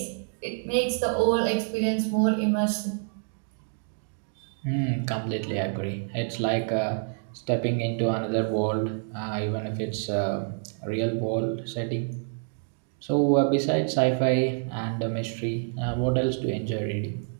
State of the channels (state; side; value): silent; left; 60 dB below the other